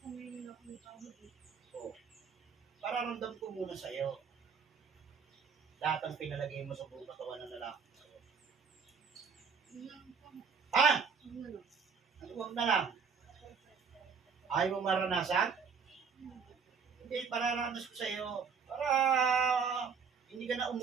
ngayon ako may tawag eh. O. Pararamdam ko muna sa iyo. Lahat ang pinalagay mo sa buong katawan ng lalaki. Yun lang po. Ha? Ano na lang. Ano wag na lang? Ayaw mo maranasan? Hindi, pararanas ko sa iyo. Para hindi ka na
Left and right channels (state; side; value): quieter; left; 6.0 dB